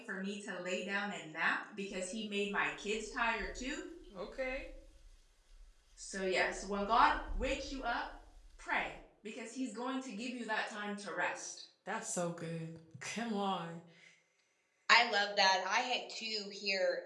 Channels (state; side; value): identical; both; correlation 1.00